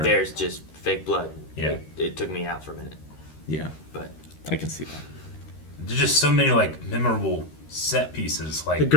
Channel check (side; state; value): right; late; 13 ms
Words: there's just fake blood. Yeah. It took me out for a minute. Yeah. But I can see that. There's just so many memorable set pieces, like The